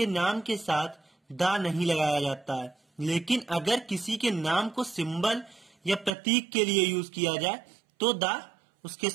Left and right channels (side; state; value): left; drops out; at 6.2 s